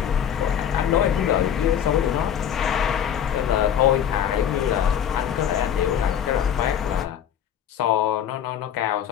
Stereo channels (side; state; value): right; quieter; 9.3 dB